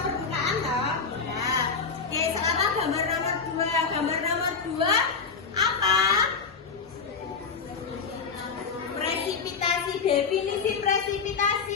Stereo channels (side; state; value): right; quieter; 5.3 dB